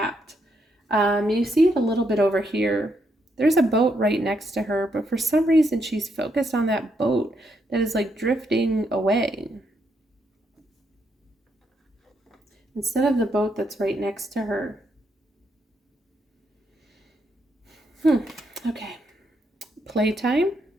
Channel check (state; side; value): normal; both; correlation 0.78